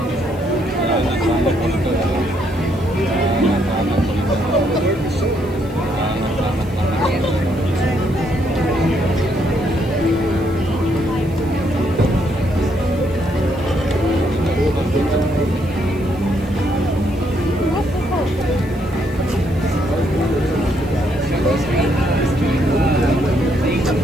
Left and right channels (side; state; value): right; noise; hiss, 26 dB below the sound